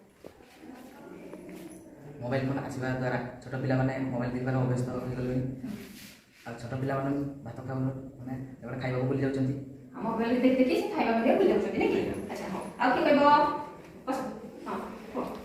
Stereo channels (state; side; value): identical; both; correlation 1.00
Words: ମୋବାଇଲ ଫୋନ ଆସିବା ଦ୍ୱାରା ଛୋଟ ପିଲାମାନେ ମୋବାଇଲ ଦେଖିବାର ଅଭ୍ୟସ୍ତ ହୋଇଗଲେଣି ଆଉ ଛୋଟ ପିଲାମାନେ ଭାତ ଖାଉନ ମାନେ ଏଗୁଡ଼ା ଖାଇବାକୁ ଭୁଲି ଯାଉଛନ୍ତି ମୋବାଇଲ ଦେଖି ଦେଖି ସେ ଖାଇବା ମଧ୍ୟ ଭୁଲି ଯାଉଛନ୍ତି ନାଇଁ କି ଆଚ୍ଛା ହଉ ଆଉ କିଏ କହିବ ବସ ହଁ କୁହ